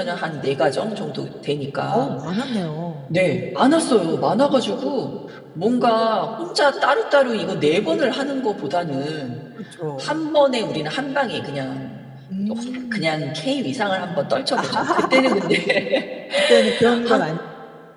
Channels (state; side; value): identical; both; correlation 1.00